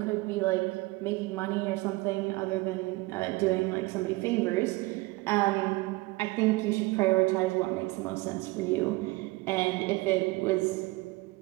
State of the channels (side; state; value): left; quieter; 22.3 dB